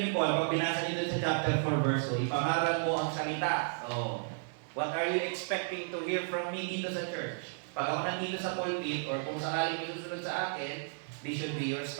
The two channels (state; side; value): silent; left; digital silence